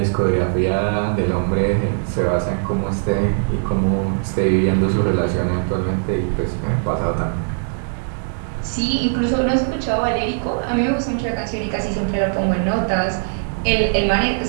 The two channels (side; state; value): left; silent; digital silence